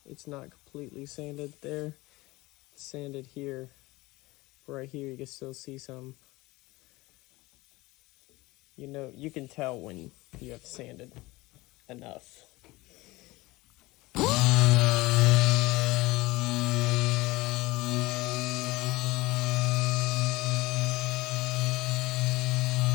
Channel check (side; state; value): right; quieter; 20.8 dB